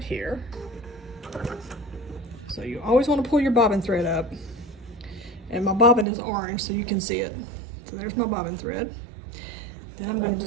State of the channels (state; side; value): drops out; left; at 6.1 s